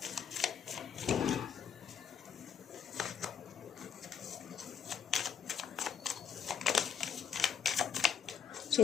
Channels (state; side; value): quieter; right; 7.4 dB